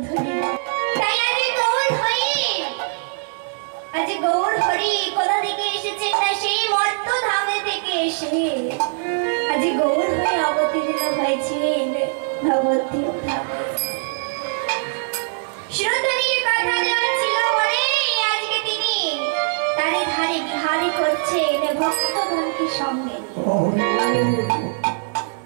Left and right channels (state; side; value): silent; left; digital silence